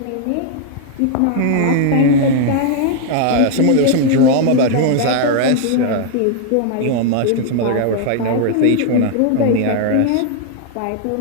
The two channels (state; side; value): different; both; correlation 0.00